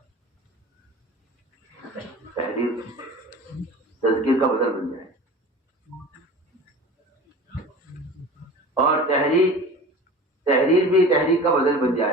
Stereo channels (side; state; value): both; normal; correlation 0.37